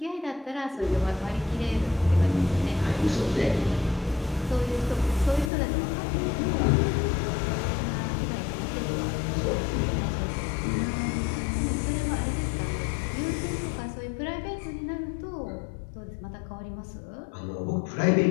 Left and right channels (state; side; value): drops out; right; at 5.5 s